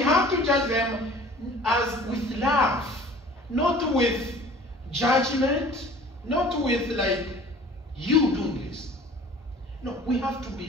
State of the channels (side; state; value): both; normal; correlation 0.47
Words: to judge them as with love, not with judgment, not with like you do this. No, we have to